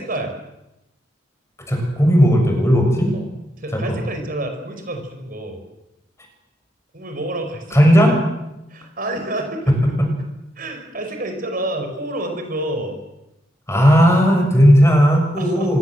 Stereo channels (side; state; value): both; normal; correlation 0.82